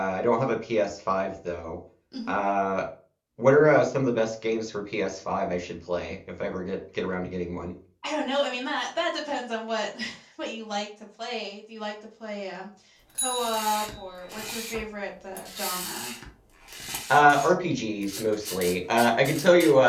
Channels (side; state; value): both; identical; correlation 1.00